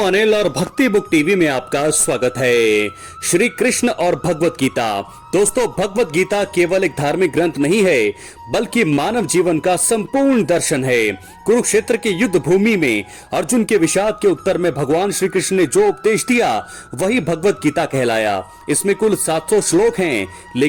और भक्ति बुक टीवी में आपका स्वागत है। श्री कृष्ण और भगवत गीता। दोस्तों, भगवत गीता केवल एक धार्मिक ग्रंथ नहीं है, बल्कि मानव जीवन का संपूर्ण दर्शन है। कुरुक्षेत्र के युद्ध भूमि में अर्जुन के विषाद के उत्तर में भगवान श्री कृष्ण ने जो उपदेश दिया वही भगवत गीता कहलाया। इसमें कुल 700 श्लोक हैं,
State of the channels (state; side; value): identical; both; correlation 1.00